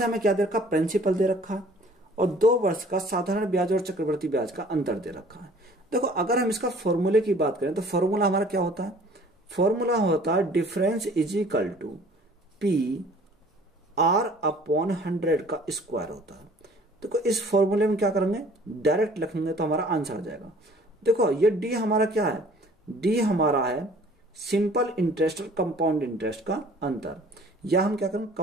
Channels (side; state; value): both; normal; correlation 0.52